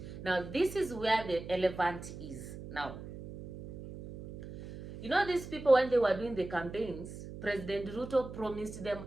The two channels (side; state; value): right; noise; hum, 11 dB below the sound